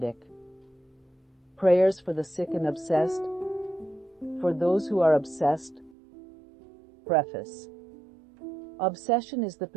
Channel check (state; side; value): drops out; left; at 6.0 s